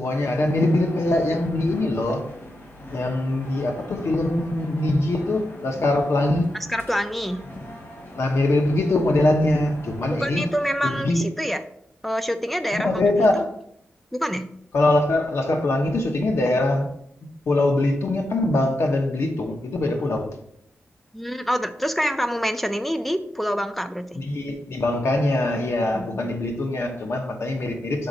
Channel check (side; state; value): both; normal; correlation 0.87